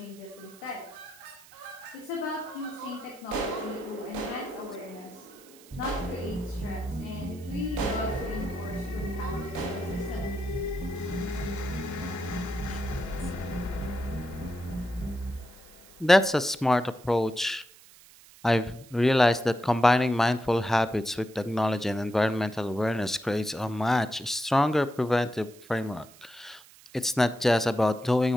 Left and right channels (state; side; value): noise; right; hiss, 23 dB below the sound